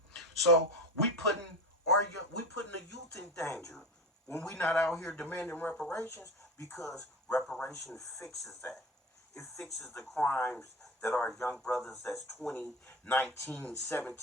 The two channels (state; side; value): normal; both; correlation 0.27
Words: So we putting the youth in danger when we not out here demanding reparations, because reparation fixes that. It fixes the crimes that our young brothers that's 20, 19,